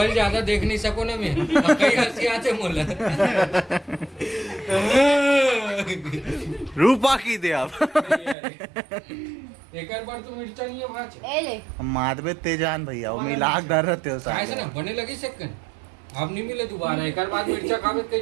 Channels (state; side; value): drops out; left; at 8.3 s